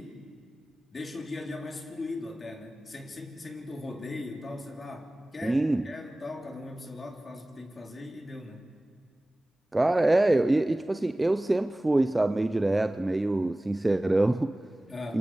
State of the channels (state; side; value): normal; both; correlation 0.98